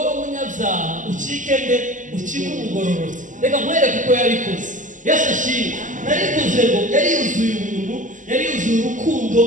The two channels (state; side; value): late; left; 0.37 ms